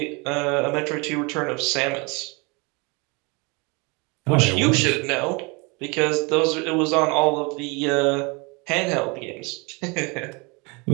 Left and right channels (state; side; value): quieter; left; 28.6 dB